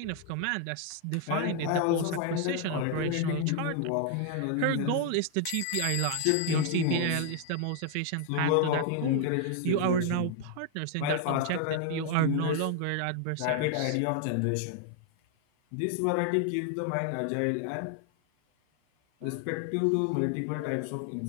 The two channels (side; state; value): both; different; correlation 0.00